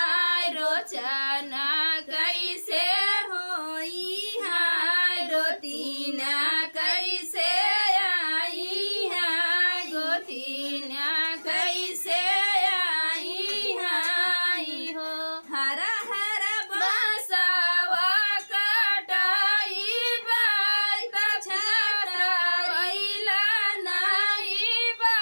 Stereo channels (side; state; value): both; inverted; correlation -1.00